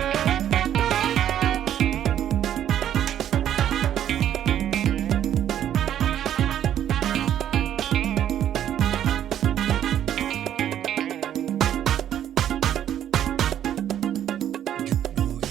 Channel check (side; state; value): left; quieter; 10.6 dB